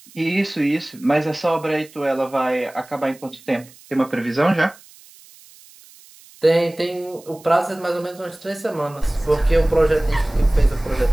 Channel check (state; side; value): noise; right; hiss, 24 dB below the sound